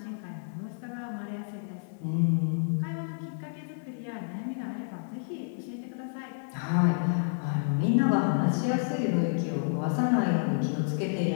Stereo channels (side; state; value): right; silent; digital silence